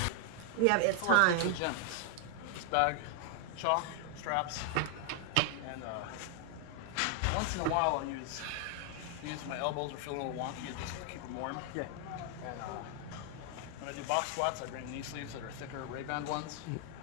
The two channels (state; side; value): different; both; correlation 0.00